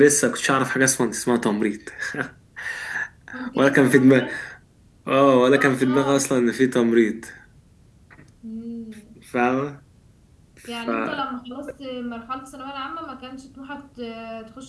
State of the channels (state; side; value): identical; both; correlation 1.00